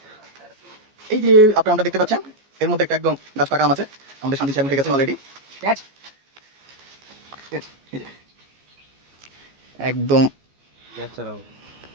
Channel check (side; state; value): left; late; 14 ms